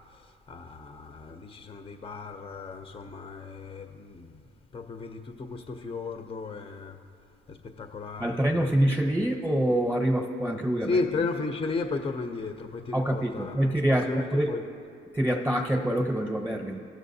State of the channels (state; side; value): normal; both; correlation 0.83